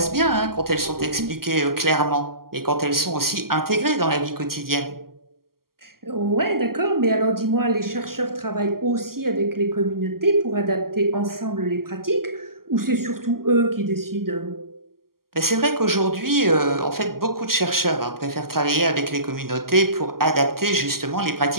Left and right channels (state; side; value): late; left; 0.92 ms